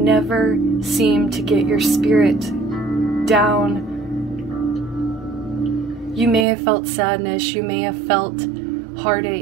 seemed to get your spirit down. You may have felt sadness, you may have felt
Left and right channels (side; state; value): left; drops out; at 6.5 s